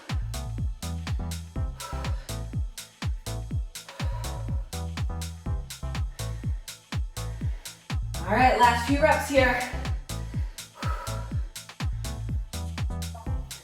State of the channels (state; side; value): identical; both; correlation 1.00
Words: All right, last few reps here.